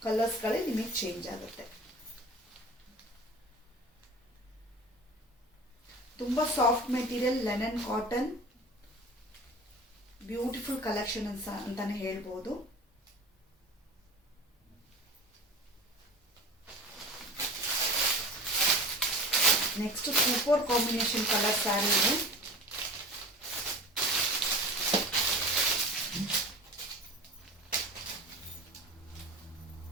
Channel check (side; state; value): both; normal; correlation 0.37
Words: ಕಲರ್ಸ್ಗಳೇ ನಿಮಗೆ ಚೇಂಜ್ ಆಗುತ್ತೆ. ತುಂಬಾ soft material, linen cotton, beautiful collection ಅಂತಾನೆ ಹೇಳ್ಬೋದು. Next super combination colour sari ಇದೆ.